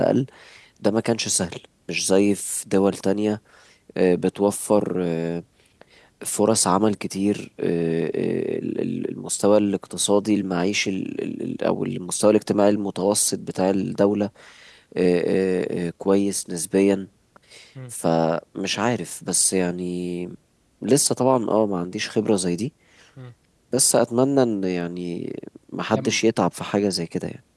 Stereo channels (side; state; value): both; identical; correlation 1.00